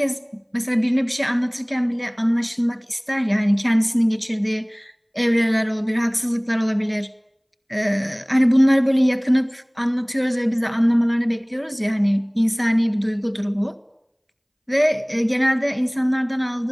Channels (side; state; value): both; identical; correlation 1.00